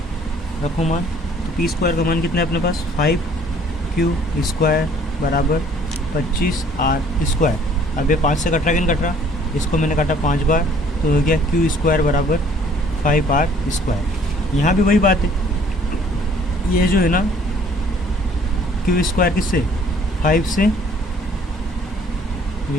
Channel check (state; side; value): normal; both; correlation 0.57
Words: रखो मान, तो पी स्क्वायर का मान कितना है अपने पास, 5q स्क्वायर बराबर 25 आर स्क्वायर। अब ये 5 से कट रहा कि नहीं कट रहा, इसको मैंने काटा 5 बार, तो हो गया q स्क्वायर बराबर 5 आर स्क्वायर। यहाँ भी वही बात है, ये जो है ना q स्क्वायर किससे, 5 से